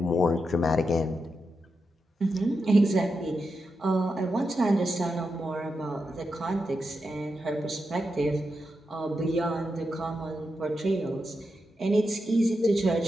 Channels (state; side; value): normal; both; correlation 0.87